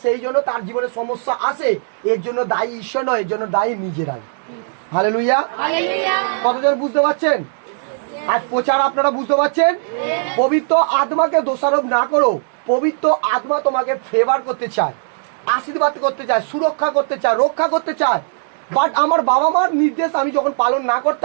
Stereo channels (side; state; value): left; silent; 67 dB below the other